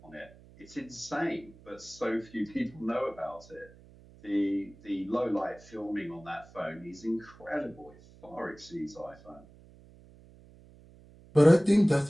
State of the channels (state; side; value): noise; right; hum, 23 dB below the sound